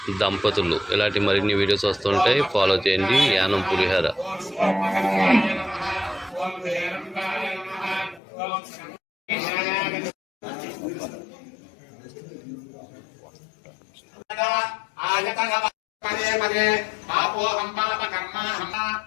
దంపతులు. ఇలాంటి మరిన్ని వీడియోస్ వస్తుంటాయి, ఫాలో చేయండి. యానం పులిహోర. పదే పదే పాపోహం పాపకర్మాహం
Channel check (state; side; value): drops out; right; at 8.2 s